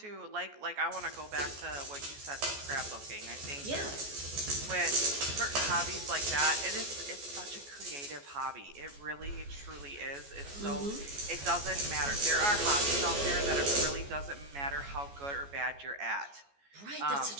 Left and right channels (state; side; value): late; left; 14 ms